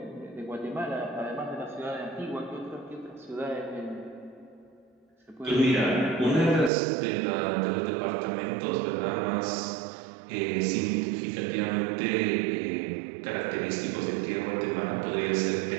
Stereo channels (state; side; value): drops out; left; at 6.7 s